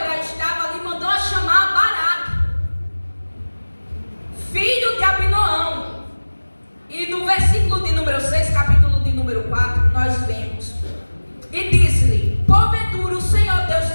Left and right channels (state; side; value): inverted; both; correlation -1.00